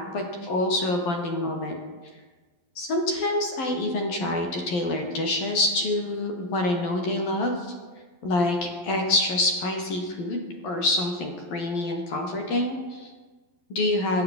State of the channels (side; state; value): right; late; 11 ms